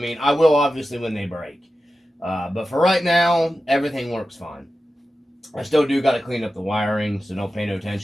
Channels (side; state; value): both; normal; correlation 0.93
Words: I will obviously when they break. But for right now, everything works fine. I still do got to clean up the wiring, so don't pay no